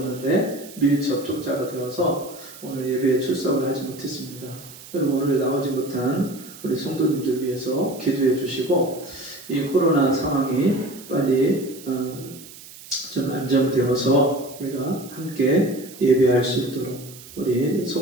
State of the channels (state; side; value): noise; right; hiss, 18 dB below the sound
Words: 밀접촉자가 되어서 오늘 예배에 출석을 하지 못했습니다. 여러분 오늘 나오지 못한 우리 성도님들 위해서 기도해 주시고 이 코로나 상황이 빨리 좀 안정되어서 우리가 함께 예배할 수 있도록 우리